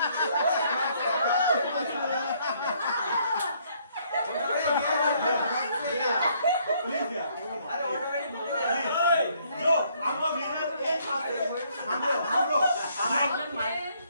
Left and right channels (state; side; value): inverted; both; correlation -0.67